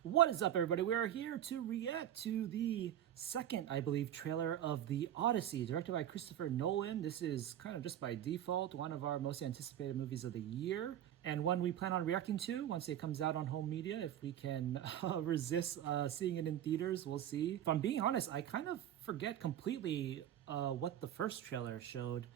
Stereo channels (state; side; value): quieter; left; 11.1 dB